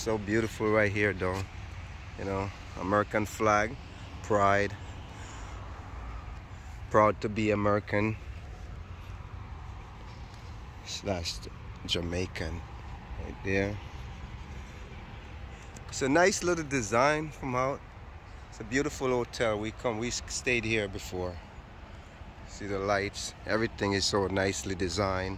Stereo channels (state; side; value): identical; both; correlation 1.00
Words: beautiful right here though. You know, American flag, pride, proud to be American / Jamaican right there. It's a nice little design from out. It's a beautiful hotel. We stayed here before. See the lights, everything is so nicely designed.